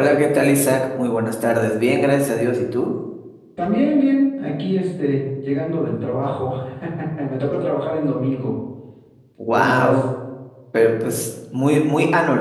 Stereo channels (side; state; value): both; identical; correlation 1.00